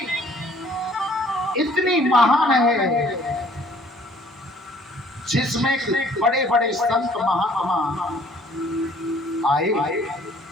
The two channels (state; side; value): normal; both; correlation 0.58